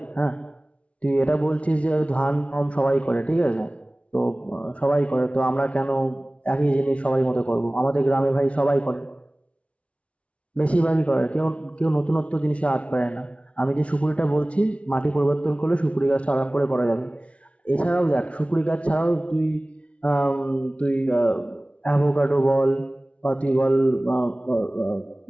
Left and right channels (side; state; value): right; late; 0.062 ms